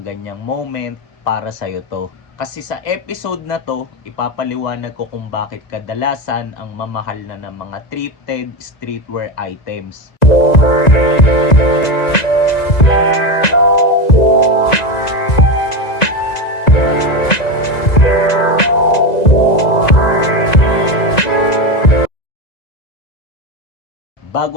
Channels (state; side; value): late; right; 1.9 ms